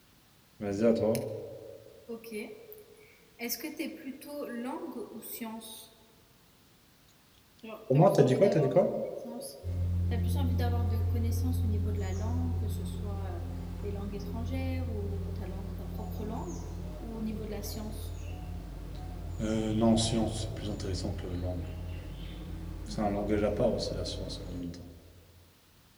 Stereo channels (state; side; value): identical; both; correlation 1.00